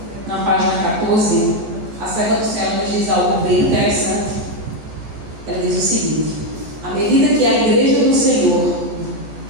na página 14, a serva do céu nos diz algo bem interessante. Ela diz o seguinte: à medida que a igreja do Senhor,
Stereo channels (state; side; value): late; left; 14 ms